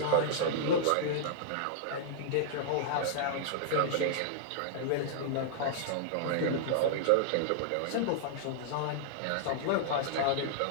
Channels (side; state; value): both; different; correlation -0.02